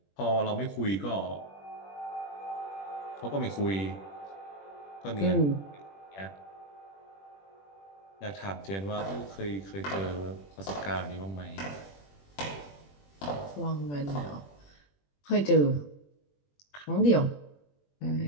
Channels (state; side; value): late; right; 21 ms